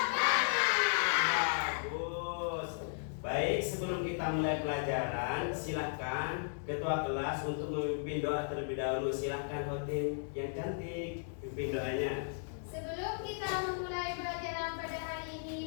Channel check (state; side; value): silent; right; digital silence